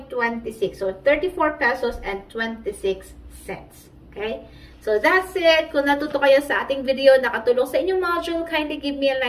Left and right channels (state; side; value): identical; both; correlation 1.00